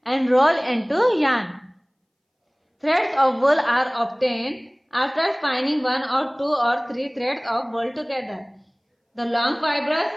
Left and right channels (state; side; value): identical; both; correlation 1.00